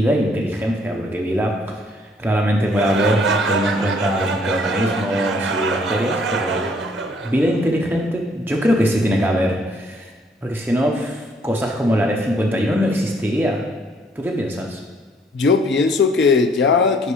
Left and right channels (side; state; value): both; normal; correlation 0.64